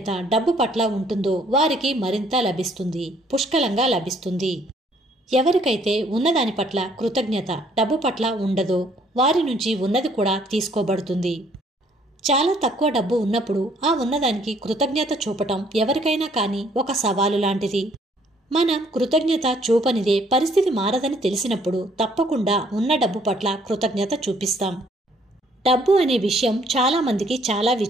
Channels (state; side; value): normal; both; correlation 0.63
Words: డబ్బు పట్ల ఉంటుందో వారికి మరింత లభిస్తుంది, పుష్కలంగా లభిస్తుంది. ఎవరికైతే ఉన్నదాని పట్ల కృతజ్ఞత డబ్బు పట్ల ఉండదో వారి నుంచి ఉన్నది కూడా తీసుకోబడుతుంది. చాలా తక్కువ డబ్బు ఉన్నప్పుడు ఆ ఉన్నదానికి కృతజ్ఞత చూపటం ఎవరికైనా కానీ ఒక సవాలు లాంటిది. మనం కృతజ్ఞత చూపనిదే పరిస్థితి మారదని తెలిసినప్పుడు తప్పకుండా ఉన్న డబ్బు పట్ల కృతజ్ఞత చూపిస్తాం. డబ్బు అనే విషయం చాలా మందికి చాలా